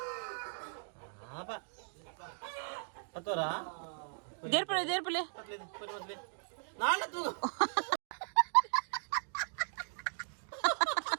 ಪಾಪ ಹತ್ತೋರಾ ದೇರ್ಪಲೆ ನಾಳೆ ತೂ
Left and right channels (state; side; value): silent; left; digital silence